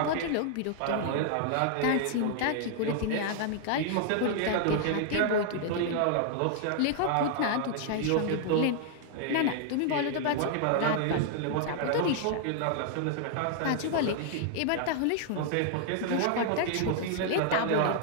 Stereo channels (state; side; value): different; both; correlation 0.00